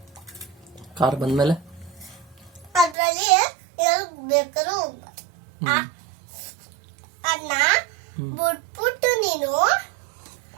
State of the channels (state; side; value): drops out; left; at 3.0 s